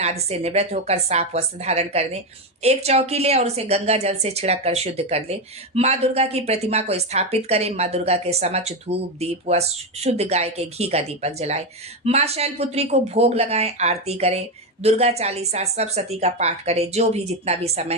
आदि से निवृत्त होकर साफ वस्त्र धारण कर दें। एक चौकी ले और उसे गंगा जल से छिड़क कर शुद्ध कर ले। माँ दुर्गा की प्रतिमा को स्थापित करें। माँ दुर्गा के समक्ष धूप दीप व शुद्ध गाय के घी का दीपक जलाएं। माँ शैलपुत्री को भोग लगाएं, आरती करें, दुर्गा चालीसा सप्तशती का पाठ करें। जो भी जितना भी समय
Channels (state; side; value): normal; both; correlation 0.10